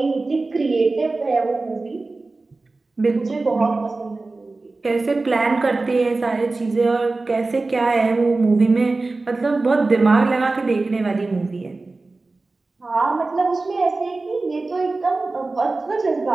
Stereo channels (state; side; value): quieter; left; 3.4 dB